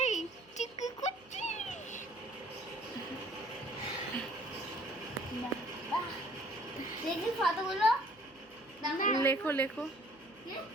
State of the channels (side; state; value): right; noise; hum, 29 dB below the sound